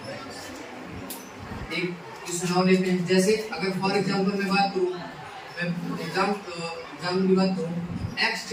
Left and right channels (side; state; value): both; identical; correlation 1.00